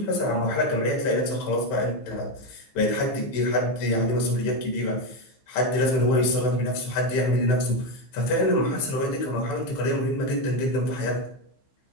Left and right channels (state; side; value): late; right; 15 ms